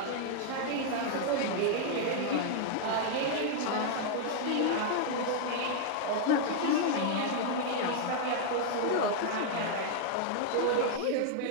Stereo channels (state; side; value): different; both; correlation 0.00